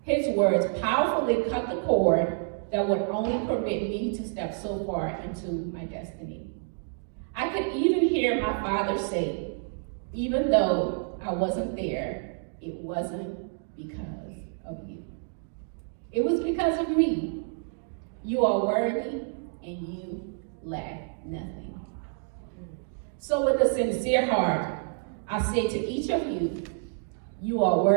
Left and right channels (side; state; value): left; silent; 58 dB below the other